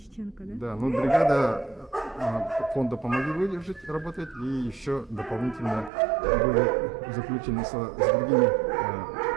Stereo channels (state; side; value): drops out; left; at 5.9 s